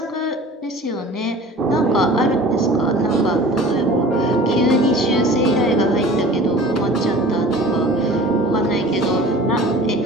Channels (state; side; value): normal; both; correlation 0.43